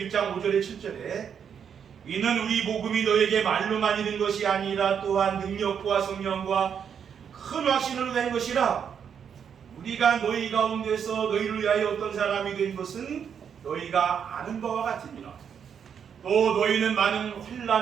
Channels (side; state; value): left; quieter; 7.6 dB